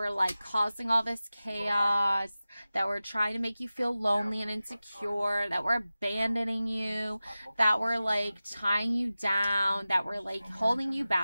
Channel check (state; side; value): inverted; both; correlation -0.96